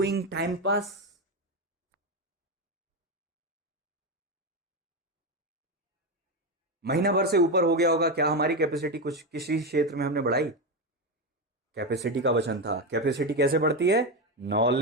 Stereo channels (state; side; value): normal; both; correlation 0.12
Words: time pass. महीना भर से ऊपर हो गया होगा, क्या हमारी कैपेसिटी कुछ किसी क्षेत्र में हमने बढ़ाई? कैपेसिटी का वचन था। कैपेसिटी कैसे बढ़ती है?